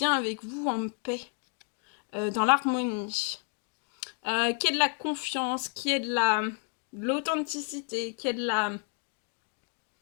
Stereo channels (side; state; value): right; quieter; 39.3 dB